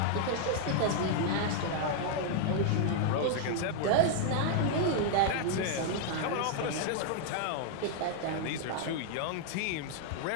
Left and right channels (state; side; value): different; both; correlation -0.01